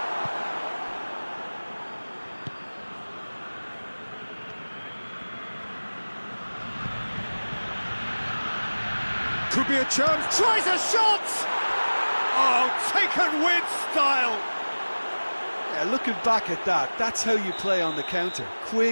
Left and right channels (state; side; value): inverted; both; correlation -1.00